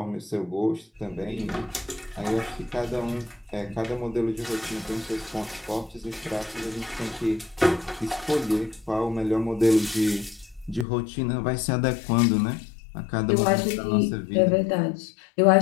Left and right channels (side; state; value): right; drops out; at 10.9 s